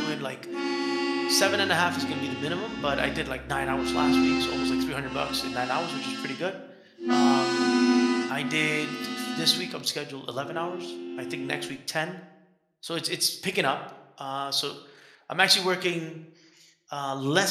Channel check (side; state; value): both; identical; correlation 1.00